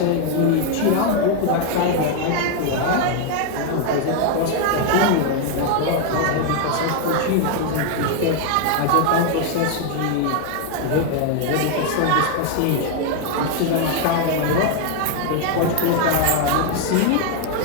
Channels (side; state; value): both; different; correlation 0.00